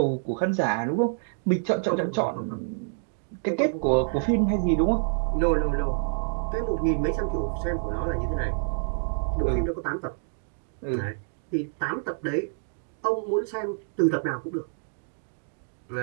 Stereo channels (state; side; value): silent; left; digital silence